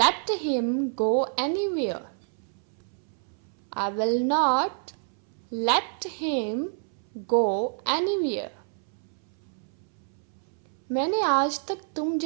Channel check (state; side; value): silent; left; 60 dB below the other